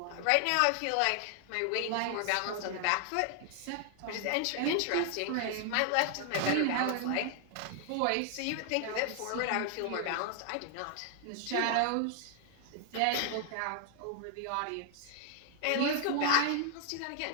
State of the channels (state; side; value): different; both; correlation 0.00